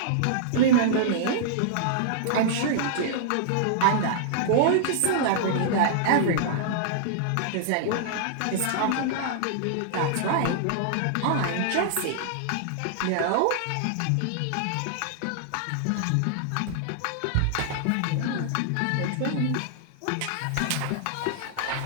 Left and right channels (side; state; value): both; different; correlation -0.01